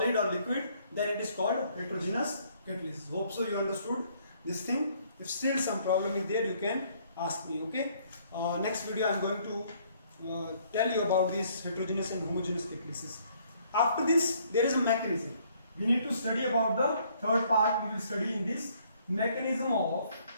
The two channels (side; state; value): both; inverted; correlation -0.64